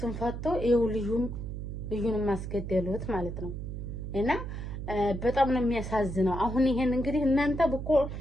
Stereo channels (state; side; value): noise; right; hum, 6 dB below the sound